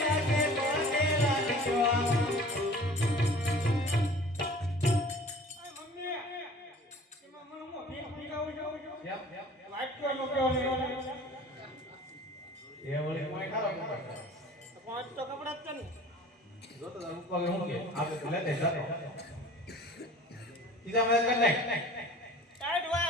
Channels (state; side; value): normal; both; correlation 0.45